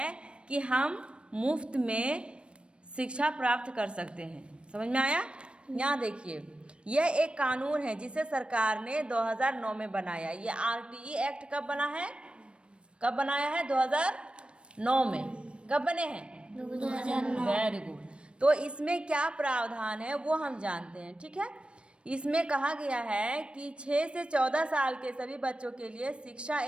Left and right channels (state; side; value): late; left; 0.058 ms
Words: कि हम मुफ्त में शिक्षा प्राप्त कर सकते हैं। समझ में आया? यहाँ देखिए, यह एक कानून है जिसे सरकार ने 2009 में बनाया। ये RTE एक्ट कब बना है? कब बनाया है? 2009 में। कब बने हैं? 2009। Very good. तो इसमें क्या प्रावधान है वो हम जानते हैं। ठीक है, इसमें कहा गया है कि 6 से 14 साल के सभी बच्चों के लिए शिक्षा